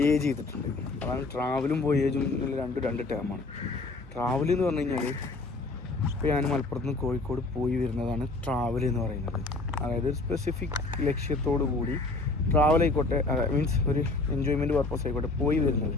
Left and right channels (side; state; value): right; quieter; 3.3 dB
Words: ചെയ്തിട്ടുണ്ട്. അതാണ് ട്രാവലും വോയേജും രണ്ട് ടേമാണ്. ട്രാവൽ എന്ന് പറഞ്ഞു കഴിഞ്ഞാൽ ഇപ്പോൾ ഞാൻ മലപ്പുറത്ത് നിന്ന് കോഴിക്കോട് പോയി വരുന്നതാണ് ട്രാവൽ എന്ന് പറയുന്നത്. അതായത് ഒരു സ്പെസിഫിക് ലക്ഷ്യത്തോടു കൂടി ട്രാവൽ ആയിക്കോട്ടെ, മീൻസ് ഒരു എൻജോയ്മെൻറ്റ് പർപ്പസ് ആയിക്കോട്ടെ പോയി വരുന്നത്.